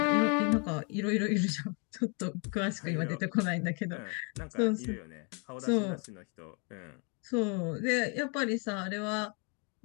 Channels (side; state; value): right; quieter; 35.5 dB